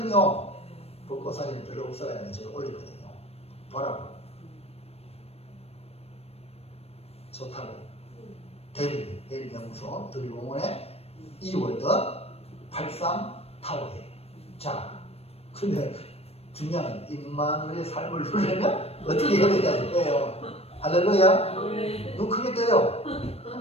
벚꽃 사진이 별로 없어가지고 제가 올렸거든요. 보라고. 좋다고. 대리 연구소 드리공원에 2월드 83타워에. 자, 근데 중요한 임마누엘의 삶을 누리려면 어떻게 해야 되냐는 거예요. 할렐루야. 눈 크게 떠요.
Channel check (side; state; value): right; late; 0.29 ms